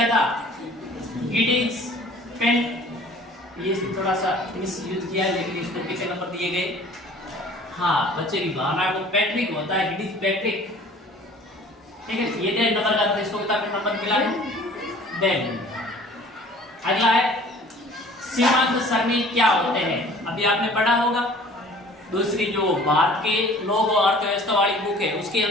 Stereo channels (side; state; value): both; normal; correlation 0.49